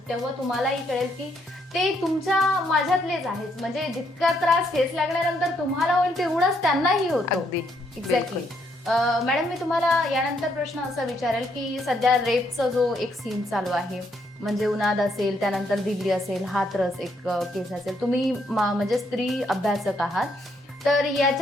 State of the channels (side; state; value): both; normal; correlation 0.74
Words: तेव्हा तुम्हालाही कळेल की ते तुमच्या माझ्यातलेच आहेत. म्हणजे जितका त्रास ठेच लागल्यानंतर तुम्हाला होईल तेवढाच त्यांनाही होतो. अगदी. एक्झॅक्टली. मॅडम, मी तुम्हाला यानंतर प्रश्न असा विचारेल की सध्या रेपचा जो एक सीन चालू आहे, म्हणजे उन्हाद असेल, त्यानंतर दिल्ली असेल, हाथरस एक केस असेल, तुम्ही म्हणजे स्त्री अभ्यासक आहात, तर